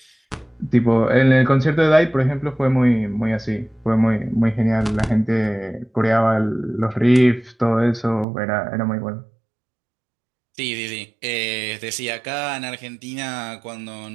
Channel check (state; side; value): drops out; left; at 8.2 s